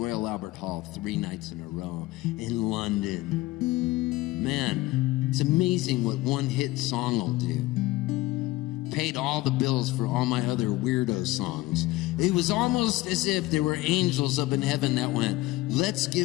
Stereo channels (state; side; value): quieter; right; 18.7 dB